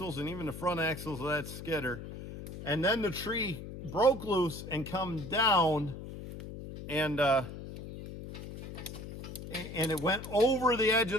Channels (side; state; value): left; noise; hum, 10 dB below the sound